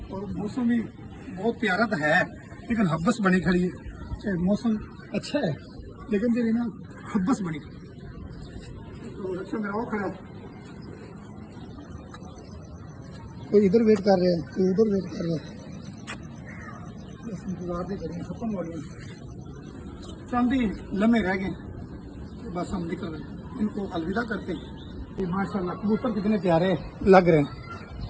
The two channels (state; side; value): identical; both; correlation 1.00